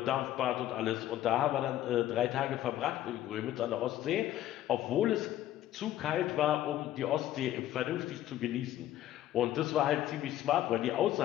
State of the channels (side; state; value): right; quieter; 13.1 dB